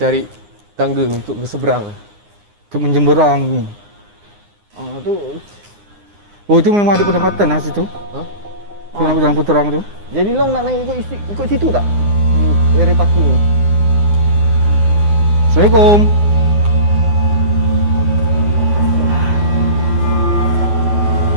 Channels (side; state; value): left; late; 9.7 ms